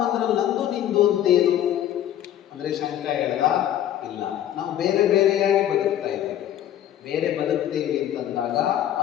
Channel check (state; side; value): quieter; right; 11.3 dB